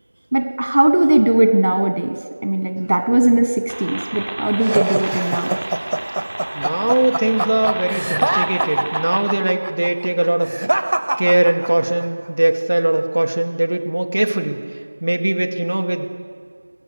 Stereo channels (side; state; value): both; inverted; correlation -1.00